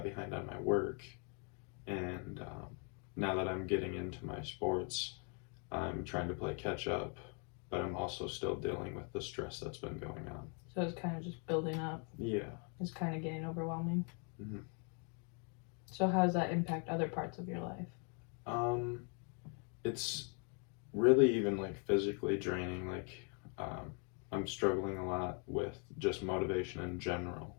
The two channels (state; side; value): quieter; right; 38.6 dB